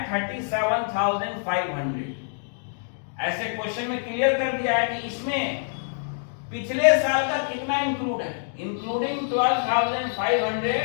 37,500। ऐसे क्वेश्चन में क्लियर कर दिया है कि इसमें पिछले साल का कितना इंक्लूड है, including 12,500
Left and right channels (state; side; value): silent; right; digital silence